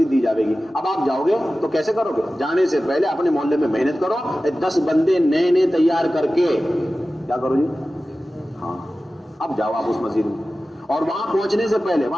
دی جائے گی. اب آپ جاؤ گے تو کیسے کرو گے؟ جانے سے پہلے اپنے محلے میں محنت کرو، 10 بندے نئے تیار کر کے کیا کرو جی؟ ہاں اب جاؤ آپ اس مسجد میں، اور وہاں پہنچنے سے پہلے،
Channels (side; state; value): both; normal; correlation 0.95